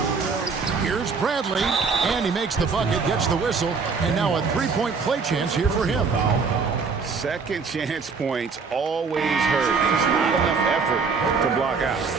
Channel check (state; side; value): quieter; left; 5.0 dB